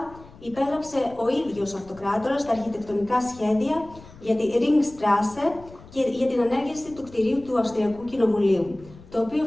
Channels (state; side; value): noise; left; rumble, 21 dB below the sound